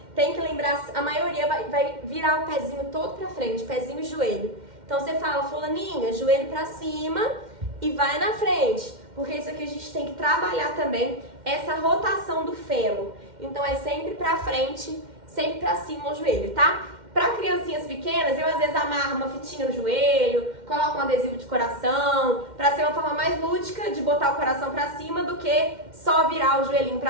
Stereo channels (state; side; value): late; left; 2.1 ms